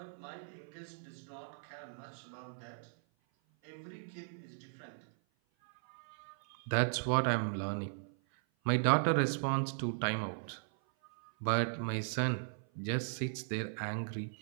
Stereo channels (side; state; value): left; silent; 53 dB below the other